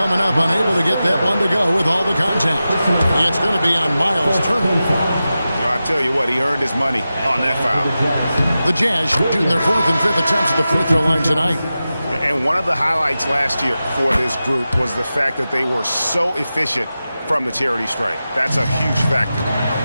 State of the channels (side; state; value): both; inverted; correlation -0.93